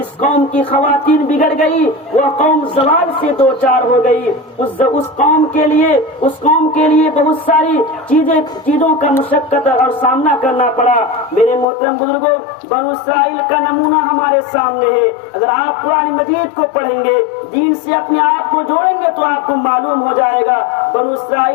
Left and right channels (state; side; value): drops out; right; at 11.7 s